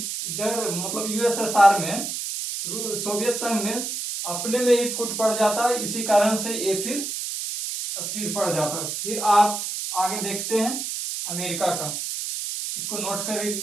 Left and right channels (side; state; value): right; noise; hiss, 4 dB below the sound